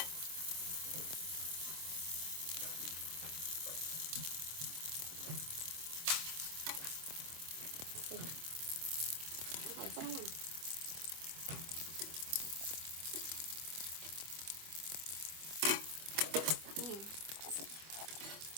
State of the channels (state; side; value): late; left; 25 ms